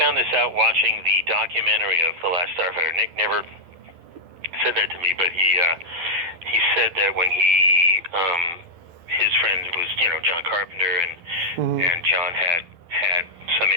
this out watching the documentary of The Last Starfighter. Nick never said that to me, but he said that when his friend was, John Carpenter, and John had some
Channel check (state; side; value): late; left; 12 ms